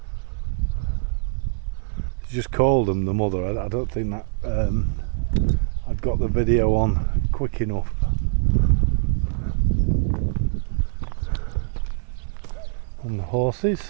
She just called them the mother. I don't think that I'd got the video on quick enough. And the horses.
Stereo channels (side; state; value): left; silent; 60 dB below the other